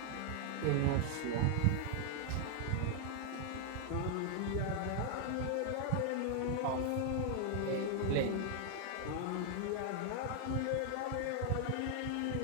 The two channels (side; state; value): both; different; correlation 0.00